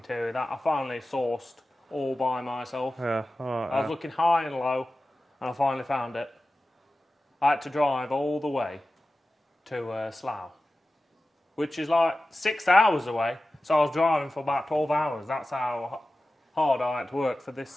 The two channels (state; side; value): normal; both; correlation 0.95